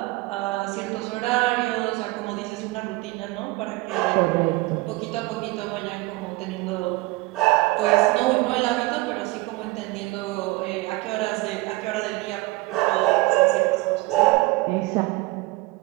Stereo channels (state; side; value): quieter; left; 21.4 dB